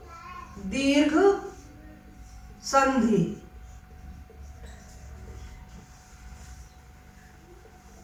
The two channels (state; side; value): identical; both; correlation 1.00